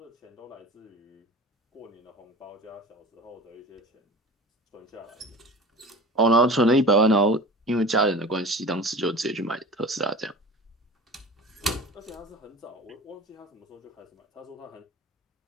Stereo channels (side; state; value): both; normal; correlation 0.37